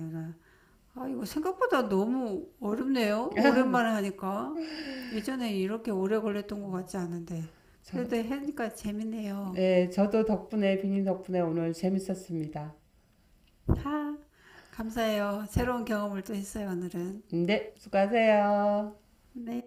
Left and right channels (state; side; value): identical; both; correlation 1.00